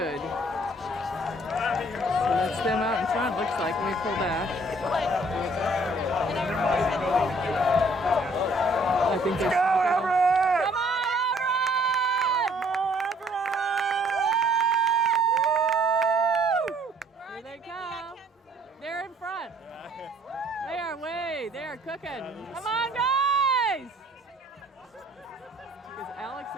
So that's them out in front, looks like, when we pull back. I think they're... Come on, Everett! Here they come. They're in front. They are they are cooking. Come on, guys! Because Alex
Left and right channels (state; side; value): normal; both; correlation 0.60